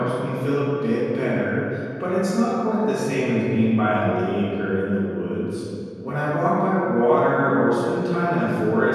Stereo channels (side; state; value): both; identical; correlation 1.00